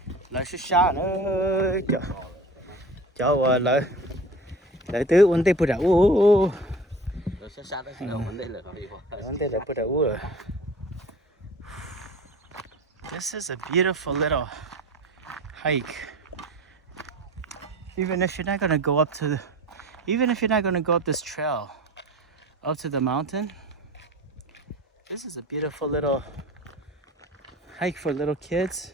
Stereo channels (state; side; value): normal; both; correlation 0.38